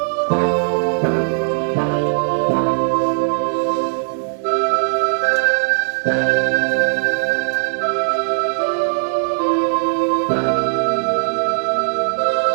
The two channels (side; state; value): left; silent; 67 dB below the other